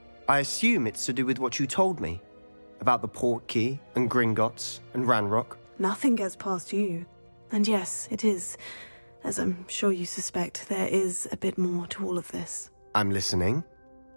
I assume it's to do with what you told me. About the Portkey, and Gringotts, and Ranrock. Nothing gets past you. And yes, it is. As I'm sure you suspect, there is a bit more to all of this. I'm listening.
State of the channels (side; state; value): both; inverted; correlation -1.00